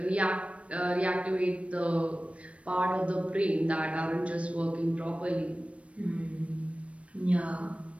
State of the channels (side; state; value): left; late; 0.063 ms